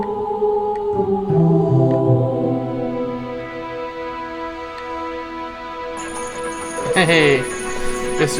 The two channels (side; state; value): both; identical; correlation 1.00